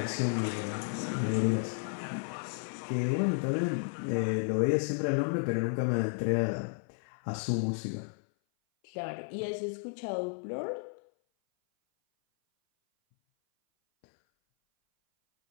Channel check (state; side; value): silent; right; 56 dB below the other